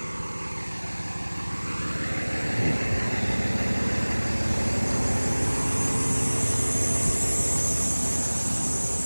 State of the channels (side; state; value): both; inverted; correlation -1.00